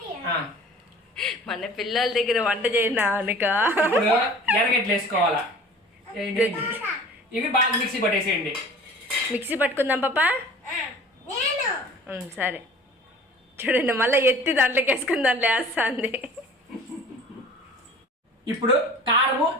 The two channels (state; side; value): normal; both; correlation 0.45